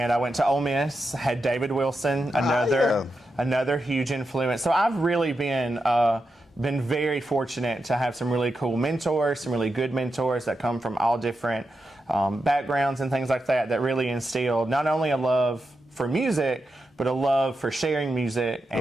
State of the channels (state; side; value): normal; both; correlation 0.88